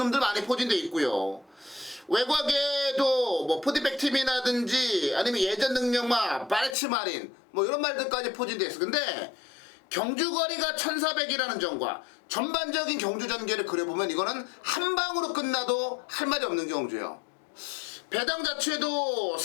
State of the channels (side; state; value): right; drops out; at 6.8 s